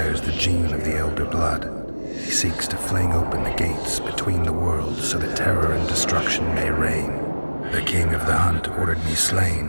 the gene of the Elder Blood. He seeks to fling open the gates between the worlds so that terror and destruction may reign. The King of the Hunt ordered me slain,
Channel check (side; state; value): both; inverted; correlation -1.00